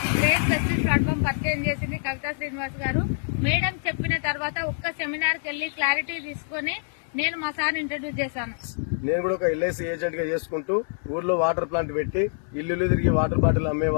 గ్రేట్ వెస్టేజ్ ప్లాట్ఫామ్ పరిచయం చేసింది కవితా శ్రీనివాస్ గారు. మేడం చెప్పిన తర్వాత ఒక్క సెమినార్ కి వెళ్లి క్లారిటీ తీసుకుని నేను మా సార్ ఇంట్రడ్యూస్ చేశాను. నేను కూడా ఒక ఎల్ఐసి ఏజెంట్ గా చేసుకుంటూ ఊర్లో వాటర్ ప్లాంట్ పెట్టి ఇల్లు తిరిగి వాటర్ బాటిల్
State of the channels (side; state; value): right; silent; 61 dB below the other